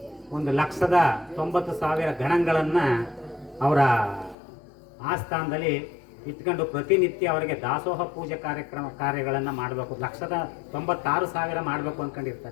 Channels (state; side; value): drops out; right; at 4.4 s